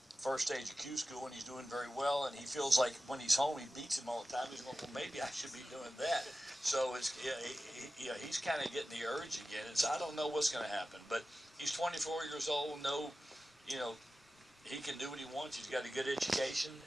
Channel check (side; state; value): both; normal; correlation 0.94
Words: first stage of Q school, and he's doing very well. And he feels like when he's home, he beats him all the time. He's going, well, maybe I should be doing that. So it's he's kind of getting the urge again. And so I don't know what's going to happen, but he's 24 years old. He can do what he wants. He's got a good education.